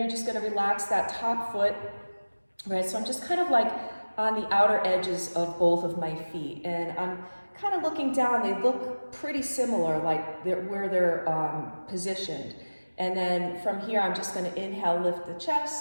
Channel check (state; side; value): inverted; both; correlation -1.00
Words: just gonna relax that top foot, right? So I'm just kind of like on the outer edges of both of my feet. And I'm kind of looking down, they look pretty similar, like where they're positioned. And then from here, I'm just gonna inhale, lift the